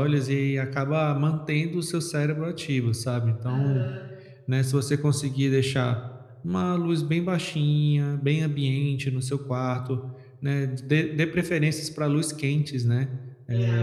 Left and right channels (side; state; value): both; identical; correlation 1.00